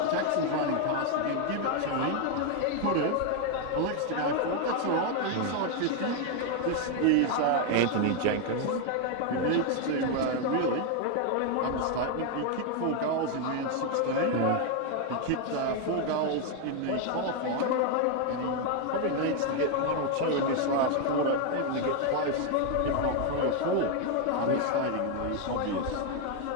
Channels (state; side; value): different; both; correlation 0.01